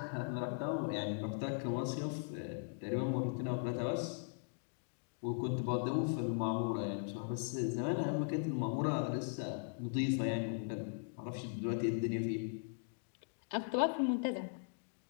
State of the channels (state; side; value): silent; right; digital silence